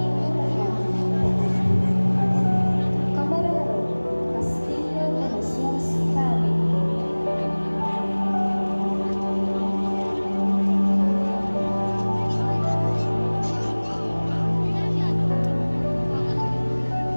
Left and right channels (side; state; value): both; inverted; correlation -1.00